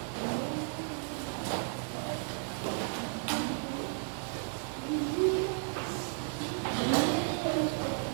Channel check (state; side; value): silent; left; 55 dB below the other